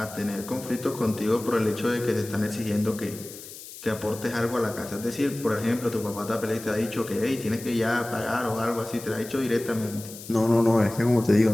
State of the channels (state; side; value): noise; left; hiss, 14 dB below the sound